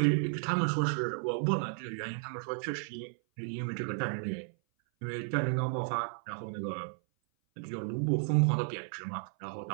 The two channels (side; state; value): left; silent; 56 dB below the other